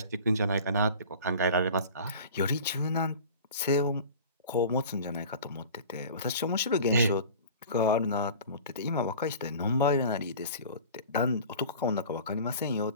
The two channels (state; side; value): inverted; both; correlation -0.40